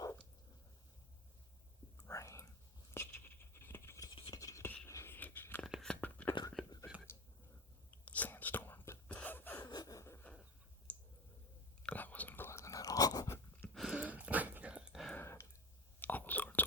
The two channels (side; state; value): both; normal; correlation 0.23